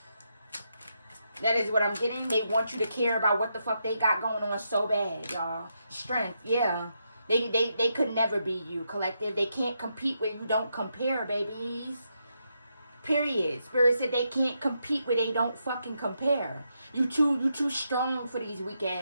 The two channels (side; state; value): both; inverted; correlation -0.82